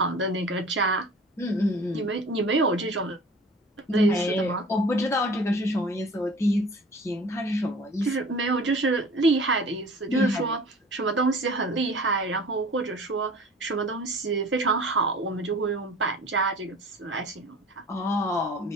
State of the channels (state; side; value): normal; both; correlation 0.44